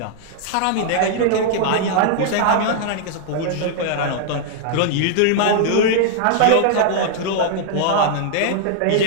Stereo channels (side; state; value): both; different; correlation -0.01